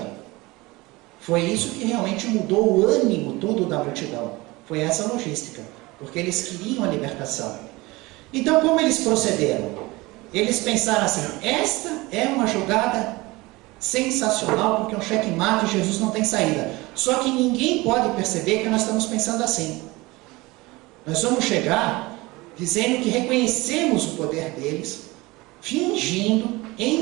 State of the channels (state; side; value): quieter; left; 22.0 dB